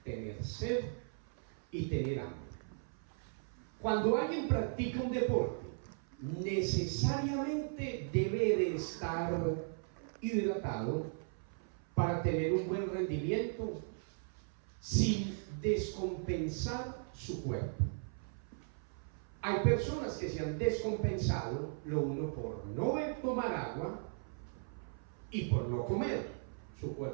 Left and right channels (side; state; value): left; silent; 53 dB below the other